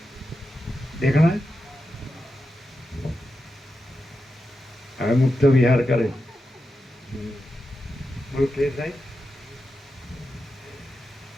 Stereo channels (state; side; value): normal; both; correlation 0.89